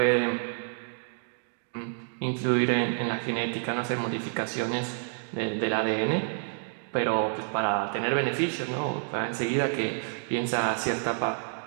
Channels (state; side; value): silent; left; 59 dB below the other